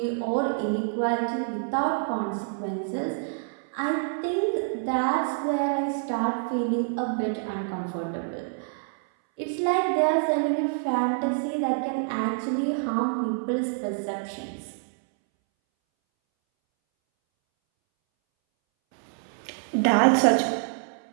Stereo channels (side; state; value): left; silent; 60 dB below the other